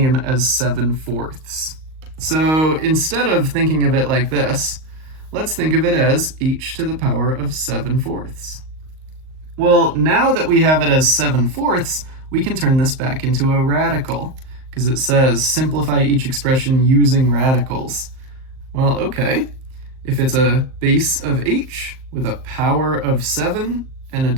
as 7/4. So instead of thinking of it like this, let's think of it as h to the power of 7/4. Well, now that we have it as 7/4, we can turn this back into a radical, because it says simplify each expression using radicals. Well, okay, if it's a base of h with a power of 7 and a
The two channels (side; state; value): left; late; 38 ms